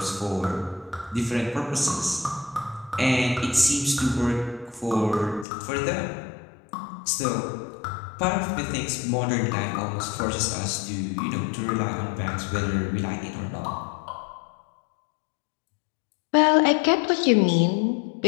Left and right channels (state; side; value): drops out; right; at 5.5 s